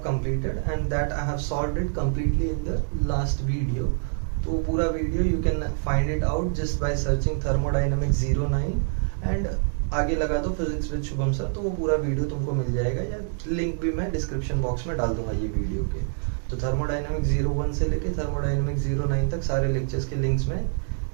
completed and that I have solved it completely in the last video. तो पूरा video you can find it out just by searching thermodynamics 09 and आगे लगा दो physics with Shubham sir, तो वो पूरा video तुमको मिल जाएगा, या लिंक भी मैं डिस्क्रिप्शन बॉक्स में डाल दूंगा ये वीडियो के। तो थर्मोडायनेमिक्स 01 से लेके थर्मोडायनेमिक्स 09 तक सारे लेक्चर्स के लिंक्स में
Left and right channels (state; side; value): silent; left; digital silence